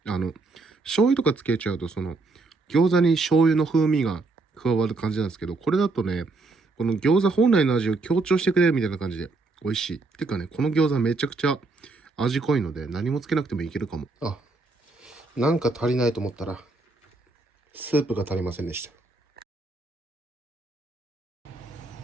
醤油とかつけちゃうと、餃子に醤油の風味が加わる感じなんですけど、これだとね、この餃子本来の味を強調してくれるみたいな感じで美味しい。てかね、この餃子めちゃくちゃ味濃いので何もつけなくてもいけるかも。なんか足りないと思ったら、スープが足りませんでした。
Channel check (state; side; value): quieter; left; 3.6 dB